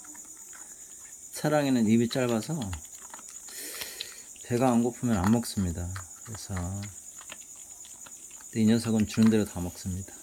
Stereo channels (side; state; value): both; identical; correlation 1.00